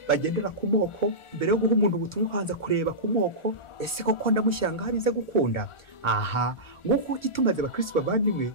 bagendera ku moko, mbere yo guha umuntu ubutumwa ukanza kureba ku moko, ese koko ndamushyira ngaho bize gukunda. Aha nguko gitumaze abakristo bavandimwe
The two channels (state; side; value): late; right; 1.4 ms